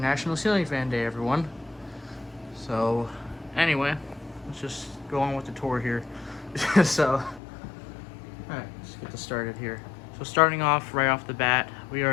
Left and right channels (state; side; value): drops out; right; at 7.4 s